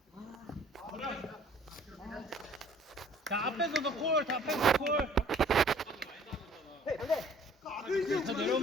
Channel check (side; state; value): both; normal; correlation 0.54